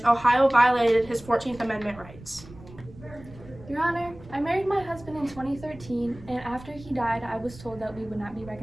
Ohio violated his 14th Amendment rights. Your Honor, I married my husband in 2013, and after he died, I was told that we would not be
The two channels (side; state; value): right; noise; rumble, 18 dB below the sound